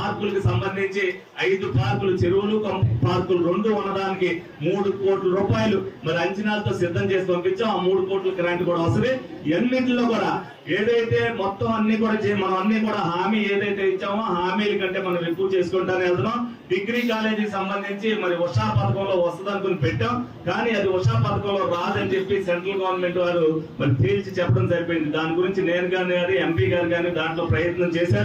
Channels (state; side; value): identical; both; correlation 1.00